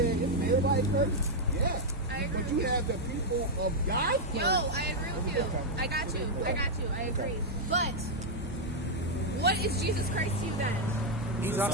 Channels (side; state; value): both; normal; correlation -0.02